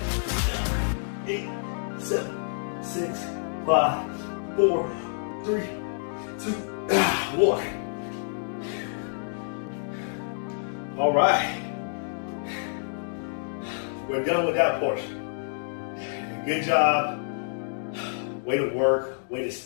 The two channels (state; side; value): silent; right; digital silence